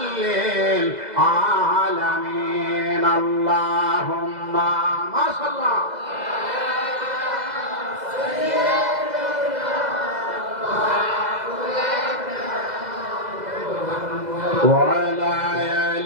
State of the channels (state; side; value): late; left; 2.0 ms